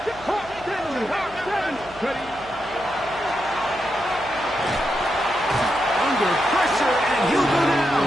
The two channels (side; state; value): right; noise; hum, 21 dB below the sound